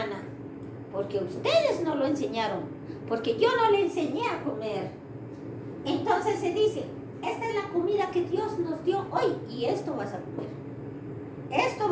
Porque ustedes no lo enseñaron. Porque yo no le enseñé a comer. Entonces se dice, esta es la comida que Dios nos dio hoy y esto vas a comer. Esto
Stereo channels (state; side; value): identical; both; correlation 1.00